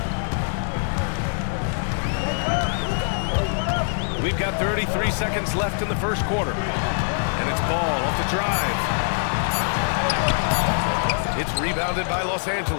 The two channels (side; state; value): right; silent; digital silence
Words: We've got 33 seconds left in the first quarter. And it's Ball off the drive. It's rebounded by Los